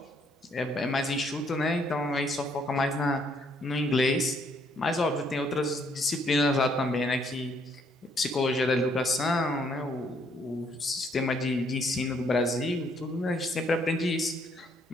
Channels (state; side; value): normal; both; correlation 0.68